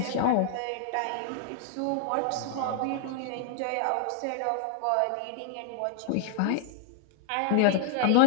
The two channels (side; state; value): both; different; correlation 0.00